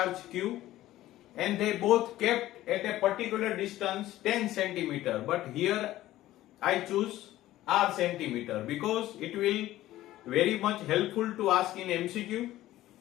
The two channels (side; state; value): right; quieter; 15.0 dB